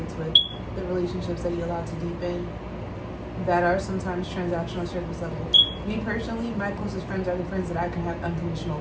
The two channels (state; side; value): identical; both; correlation 1.00